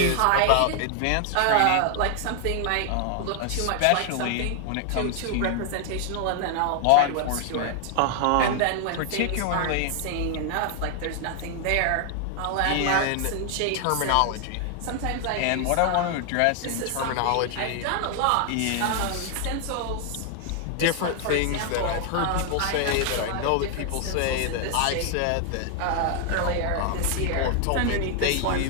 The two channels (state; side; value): different; both; correlation 0.00